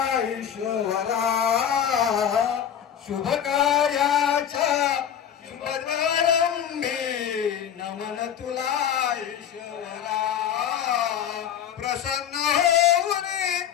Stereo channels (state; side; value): quieter; right; 9.2 dB